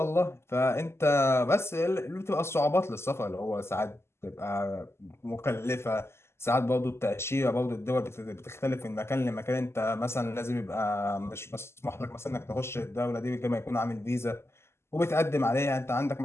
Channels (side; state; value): right; late; 0.12 ms